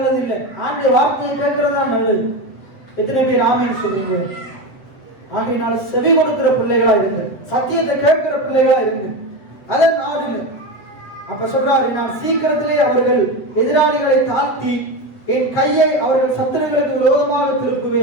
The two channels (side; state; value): right; late; 7.7 ms